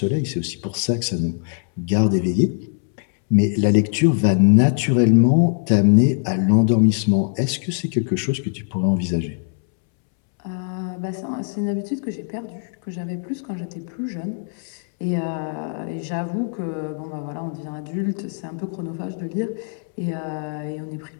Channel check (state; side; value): silent; right; 64 dB below the other